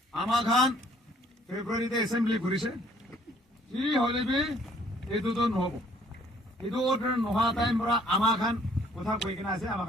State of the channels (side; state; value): both; normal; correlation 0.61